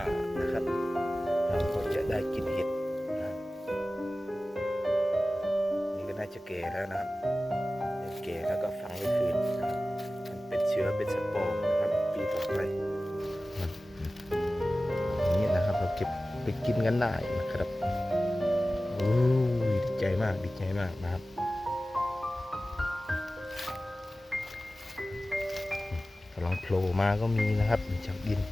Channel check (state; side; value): normal; both; correlation 0.96